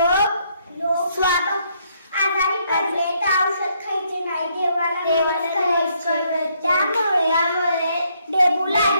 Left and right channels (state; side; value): inverted; both; correlation -0.72